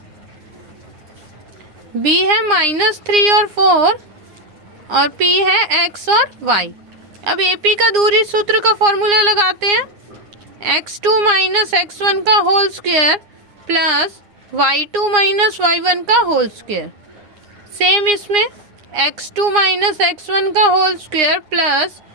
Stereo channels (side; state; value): left; late; 9.7 ms